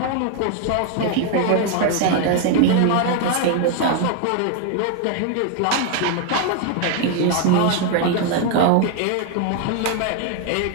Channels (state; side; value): different; both; correlation 0.00